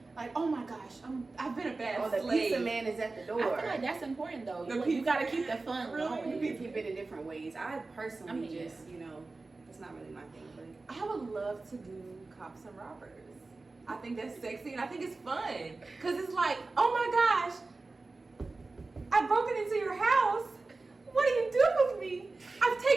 Like, oh my gosh, I've been a bad the slave. pizza man is at the door. I feel like that's important though. The You pizza gotta man? keep the fun Really? going. You can keep it in different ways. I personally yeah. just, it's not really my thing. But I would love to do cops and robbers. I think that's sexy and I think it's fun. Because it's like, oh my gosh, I've broken into your house. What do you do with me? I've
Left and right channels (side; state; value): left; quieter; 3.6 dB